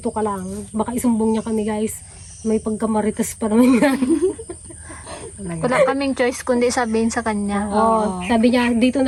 ka lang. Baka isumbong niya kami guys. May pagkamaritas pa naman yan. Wala kaming choice kundi sabihin sa kanya. Oo. Sabi niya, dito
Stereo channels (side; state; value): both; identical; correlation 1.00